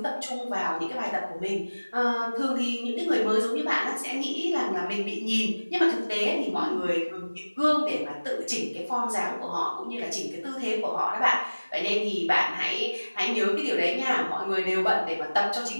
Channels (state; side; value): inverted; both; correlation -1.00